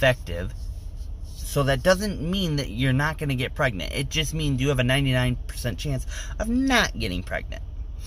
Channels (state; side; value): identical; both; correlation 1.00